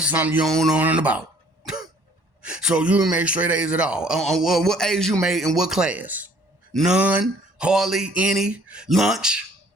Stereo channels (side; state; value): left; late; 1.1 ms